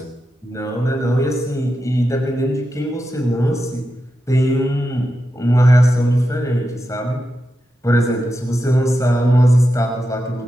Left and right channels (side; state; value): both; normal; correlation 0.89